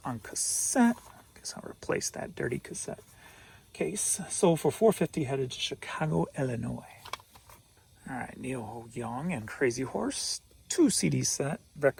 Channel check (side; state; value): both; identical; correlation 1.00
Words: on cassette. Guess I'll replace that dirty cassette case. Sold for $4.50, headed to Chicago, Illinois. All right, Neil Ho Young and Crazy Horse, 2 CD set,